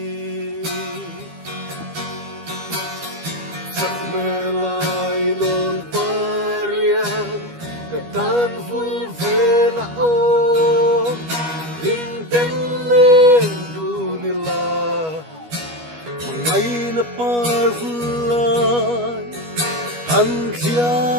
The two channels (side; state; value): left; late; 12 ms